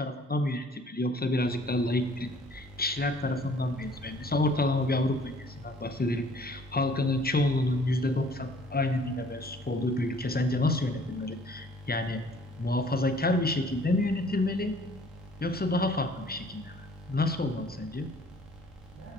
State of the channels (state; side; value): normal; both; correlation 0.56